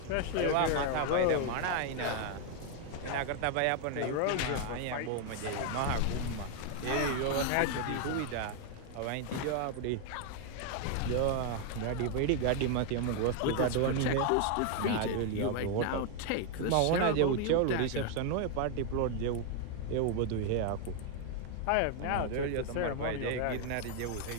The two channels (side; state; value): both; different; correlation 0.00